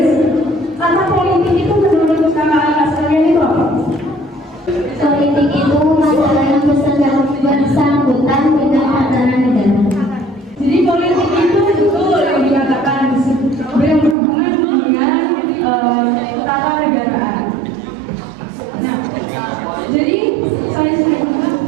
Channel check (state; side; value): drops out; left; at 14.2 s